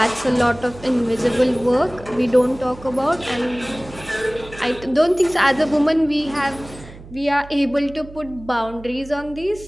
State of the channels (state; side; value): noise; right; hum, 17 dB below the sound